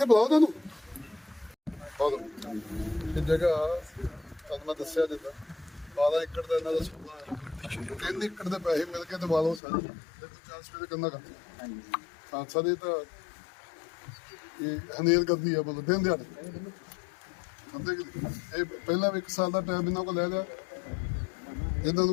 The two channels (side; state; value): right; drops out; at 9.6 s